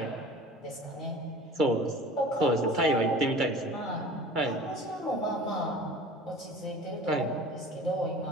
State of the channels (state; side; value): normal; both; correlation 0.42